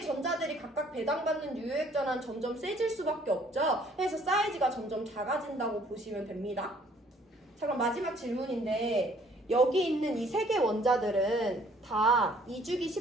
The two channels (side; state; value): both; normal; correlation 0.60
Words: 전자들이 각각 배당받는 유효 핵전화는 점점 세질 수밖에 없죠. 그래서 사이즈가 점점 작아진다고 보시면 됩니다. 자, 그럼 마지막 질문인데 여기 있는 이 3개 원자들은 다 이주기